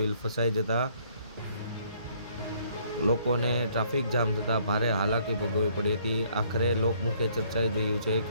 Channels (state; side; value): inverted; both; correlation -0.64